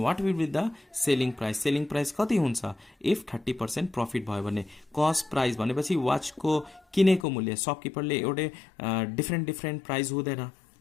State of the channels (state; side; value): drops out; right; at 7.2 s